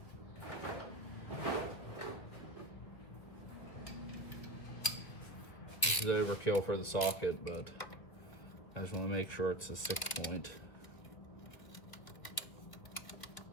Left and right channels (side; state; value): right; late; 2.3 ms